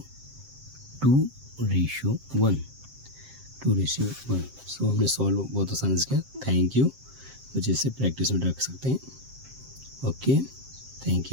2:1, 2:1। सो हमने सॉल्व बहुत आसानी से किया। Thank you. बच्चे इसे प्रैक्टिस में रख सकते हैं। Okay, thank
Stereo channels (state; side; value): late; left; 7.6 ms